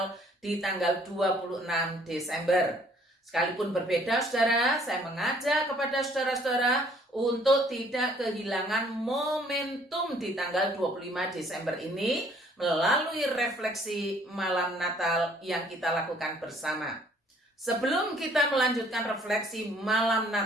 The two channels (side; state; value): both; normal; correlation 0.60